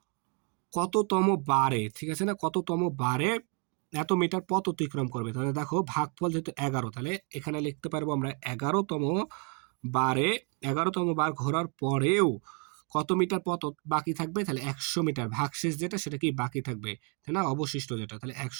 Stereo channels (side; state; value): left; quieter; 36.7 dB